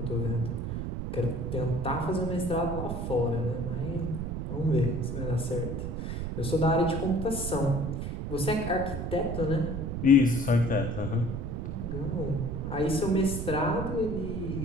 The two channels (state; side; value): noise; right; rumble, 4 dB below the sound